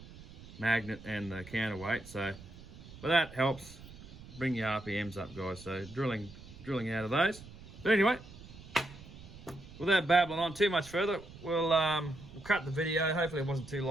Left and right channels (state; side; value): noise; right; rumble, 17 dB below the sound